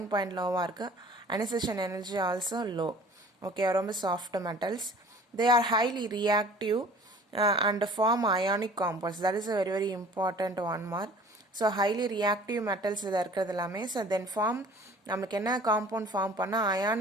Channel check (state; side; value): normal; both; correlation 0.48